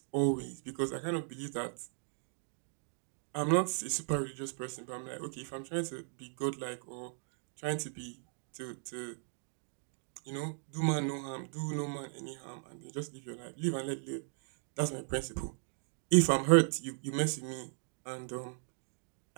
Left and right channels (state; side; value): silent; left; 53 dB below the other